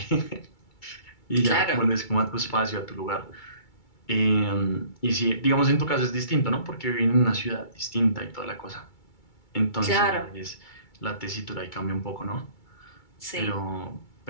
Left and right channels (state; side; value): late; right; 2.3 ms